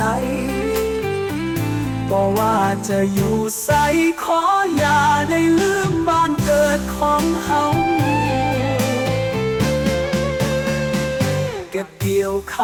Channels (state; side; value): identical; both; correlation 1.00